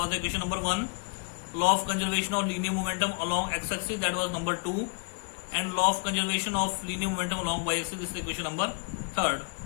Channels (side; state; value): right; quieter; 37.3 dB